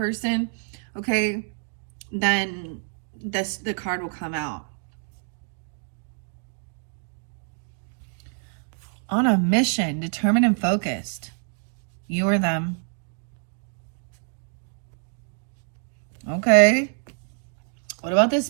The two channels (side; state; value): left; silent; 56 dB below the other